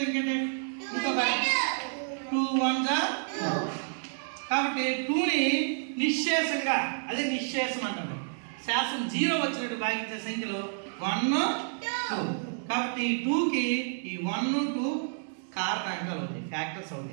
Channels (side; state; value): left; silent; digital silence